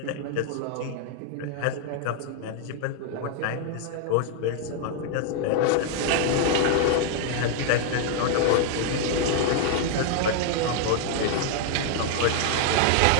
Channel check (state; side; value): different; both; correlation 0.00